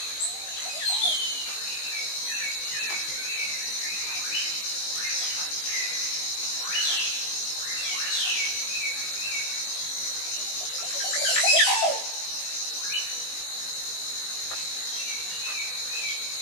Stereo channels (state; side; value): late; right; 19 ms